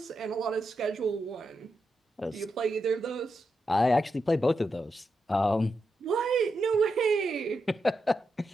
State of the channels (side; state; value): both; normal; correlation 0.86